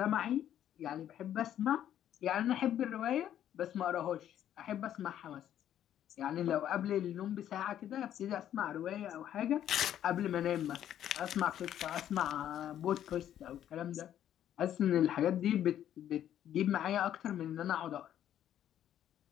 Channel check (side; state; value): right; quieter; 10.9 dB